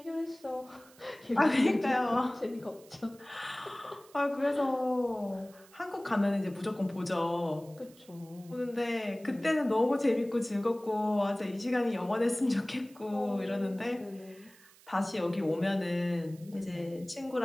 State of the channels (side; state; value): right; noise; hiss, 25 dB below the sound